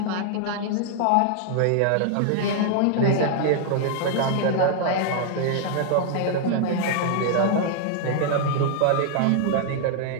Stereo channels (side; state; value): both; different; correlation -0.01